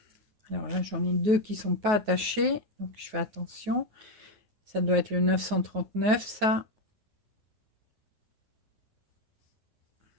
alors là, j'en ai deux qui sont pas attachés, donc je fais attention. Ça doit être le 939, ça.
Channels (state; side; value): late; left; 9.4 ms